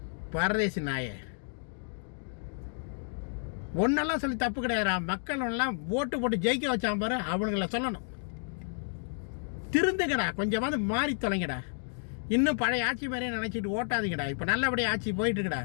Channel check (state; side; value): silent; right; digital silence